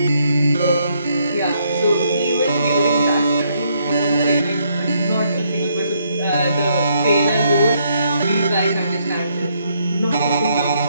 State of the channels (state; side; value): inverted; both; correlation -0.73